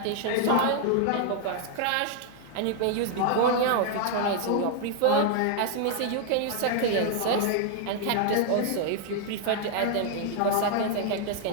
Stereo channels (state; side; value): different; both; correlation 0.00